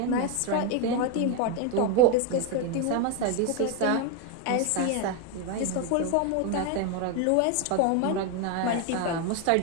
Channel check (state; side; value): different; both; correlation 0.01